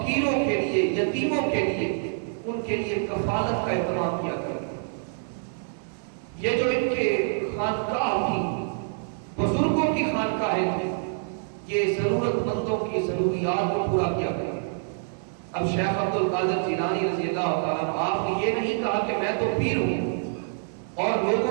کے لیے، یتیموں کے لیے، ان کے لیے کفالت کا اہتمام کیا کرتے. یہ جو ان کے خانقاہ تھی، بزرگوں کی خانقاہیں تھیں، یہ ضرورت مندوں کی ضروریات کو پورا کیا کرتے. اب شیخ عبد القادر جیلانی رضی اللہ تعالیٰ آپ نے یہ نہیں کہا کہ میں تو پیر ہوں اور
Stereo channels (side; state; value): left; silent; digital silence